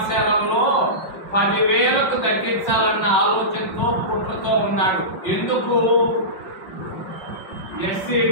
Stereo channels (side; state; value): right; late; 5.5 ms